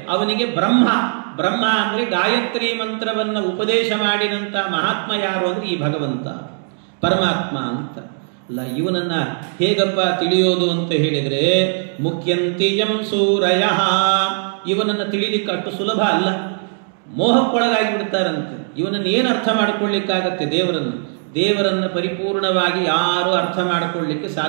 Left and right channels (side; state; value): left; silent; digital silence